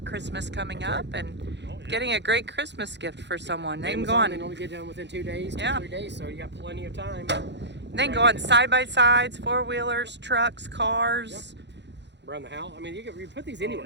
Christmas coming up and getting a great Christmas gift for someone. They can go Amazon, on. they only get done within 2 days, 3 days, so you got plenty of time. They can go on side by sides, 4-wheelers, trucks, cars. Yep. Around the house. I mean, you put these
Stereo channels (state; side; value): late; left; 0.51 ms